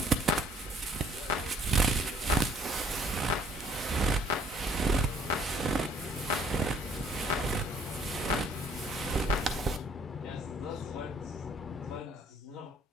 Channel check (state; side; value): normal; both; correlation 0.61